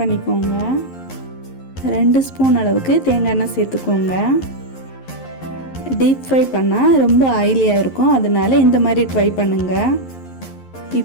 பண்ணிக்கோங்க. 2 ஸ்பூன் அளவுக்கு தேங்காய் எண்ணெய் சேர்த்துக்கோங்க. டீப் ஃப்ரை பண்ணால் ரொம்ப ஆயிலியாக இருக்கும், அதனால இந்த மாதிரி ட்ரை பண்ணுங்கள்.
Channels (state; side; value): late; right; 11 ms